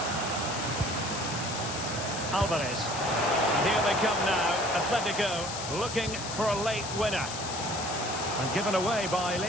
Alvarez. And here they come now. Atletico looking for a late winner. And given away by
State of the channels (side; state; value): left; noise; hiss, 7 dB below the sound